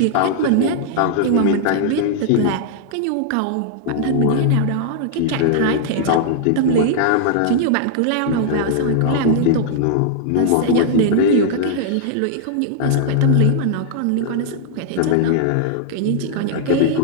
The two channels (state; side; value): different; both; correlation -0.01